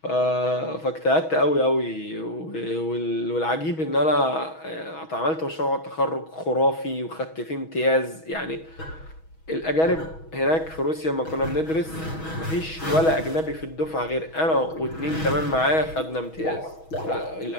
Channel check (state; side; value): late; right; 6.2 ms